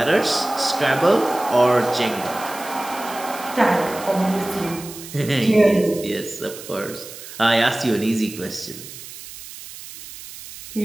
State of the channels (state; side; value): noise; right; hiss, 14 dB below the sound